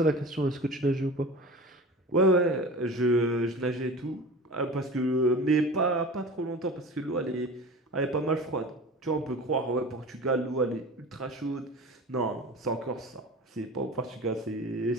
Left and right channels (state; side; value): normal; both; correlation 0.36